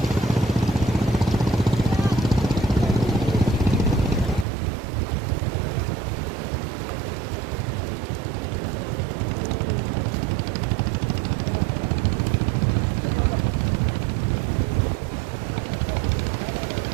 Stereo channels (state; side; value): drops out; left; at 4.5 s